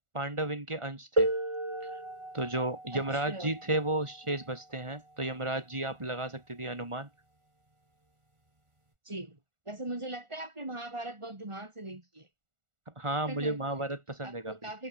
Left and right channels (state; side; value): late; left; 1.4 ms